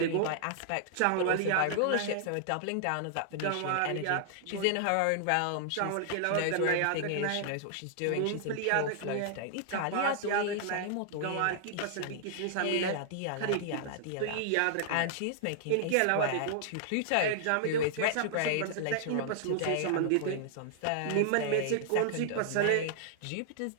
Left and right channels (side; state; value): both; different; correlation -0.01